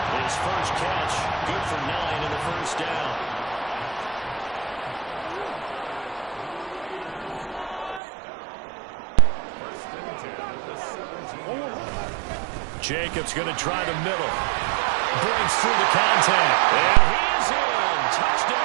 His first catch, good for 9 in the 1st down. Jacobs going to try the middle. Breaks through the contact. And he's in.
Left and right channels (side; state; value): left; drops out; at 8.0 s